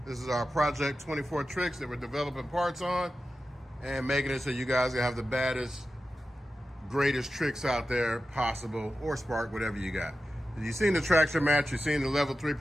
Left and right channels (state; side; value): normal; both; correlation 0.93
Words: This is our Project 24 Trixx that we're developing parts on and making it so you guys can have the baddest, greatest Trixx out there possible, or Spark, whatever you got. You've seen the traction mats, you've seen the level 3